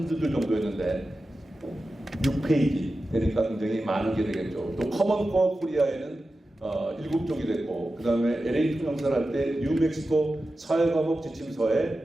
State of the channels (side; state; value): both; normal; correlation 0.93